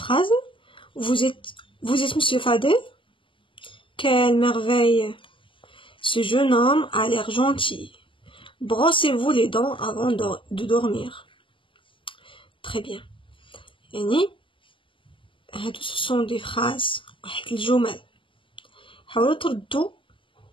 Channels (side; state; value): right; late; 0.25 ms